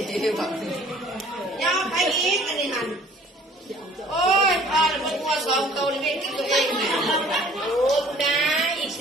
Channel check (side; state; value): both; normal; correlation 0.53